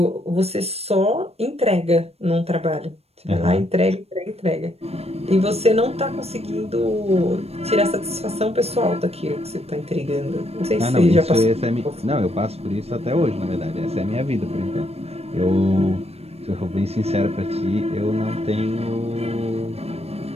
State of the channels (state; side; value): late; left; 0.30 ms